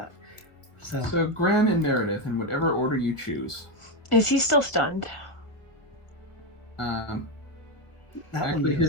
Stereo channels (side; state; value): right; late; 1.5 ms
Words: So Graham and Meredith, in whatever order you choose. Is he still stunned? that Actually, one